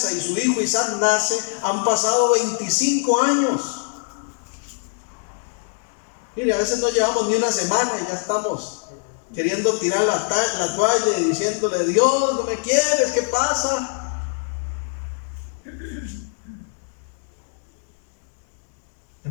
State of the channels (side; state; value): right; silent; digital silence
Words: y su hijo Isaac nace, han pasado 25 años. Mire, a veces no llevamos ni una semana y ya estamos queriendo tirar la toalla y diciéndole: Dios, no me quieres, ¿qué pasa?